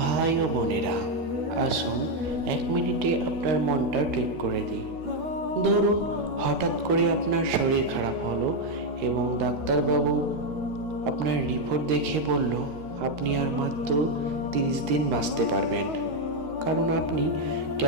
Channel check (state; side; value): late; left; 13 ms